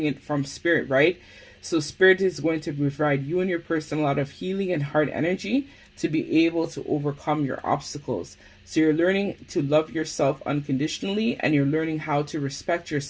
it from Spirit, right? So Spirit is going to provide you and your person a lot of healing and heart energy to be able to overcome your obstacles. So you're learning to love yourself unconditionally and you're learning how to respect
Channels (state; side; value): identical; both; correlation 1.00